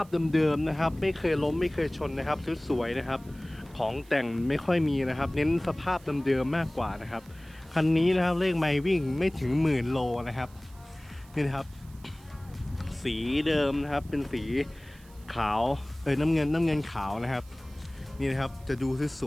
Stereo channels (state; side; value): noise; right; hiss, 26 dB below the sound